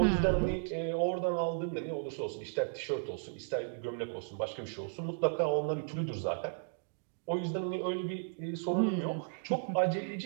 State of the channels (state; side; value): silent; left; digital silence